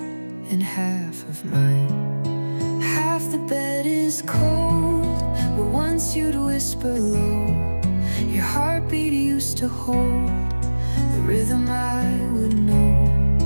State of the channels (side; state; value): both; inverted; correlation -1.00